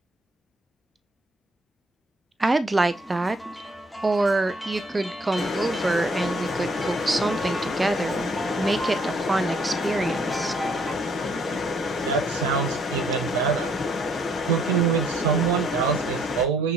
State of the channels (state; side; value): normal; both; correlation 0.66